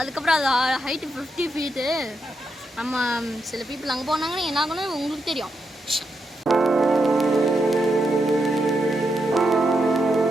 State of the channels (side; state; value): both; normal; correlation 0.83